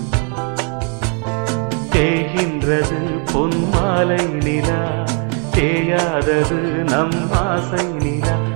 தேகின்றது பொன்மாலை நிலா தேயாதது நம் ஆசை நிலா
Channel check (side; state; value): left; quieter; 39.5 dB